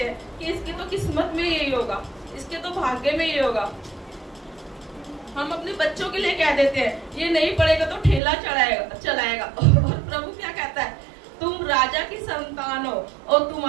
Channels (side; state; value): left; drops out; at 8.2 s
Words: हैं कि इसकी तो किस्मत में यही होगा, इसके तो भाग्य में यही होगा। हम अपने बच्चों के लिए कह देते हैं ये नहीं पढ़ेगा तो ठेला चलाएगा। और प्रभु क्या कहता है? तुम राजा की संतान हो और